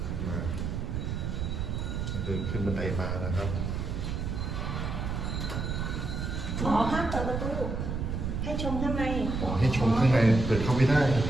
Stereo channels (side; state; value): right; noise; rumble, 3 dB below the sound